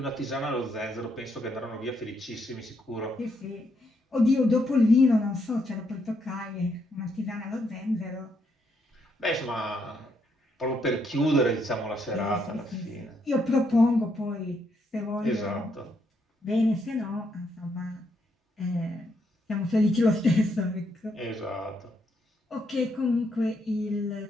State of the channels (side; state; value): both; normal; correlation 0.76